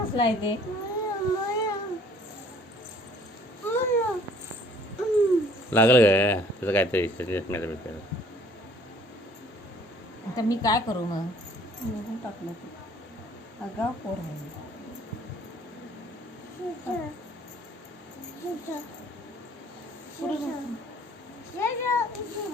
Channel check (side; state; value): both; normal; correlation 0.56